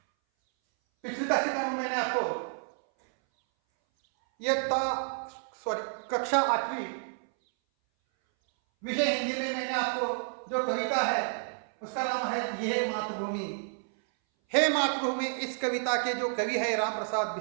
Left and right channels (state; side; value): silent; left; 58 dB below the other